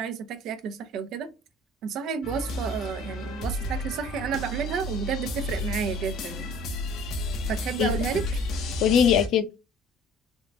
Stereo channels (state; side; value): normal; both; correlation 0.49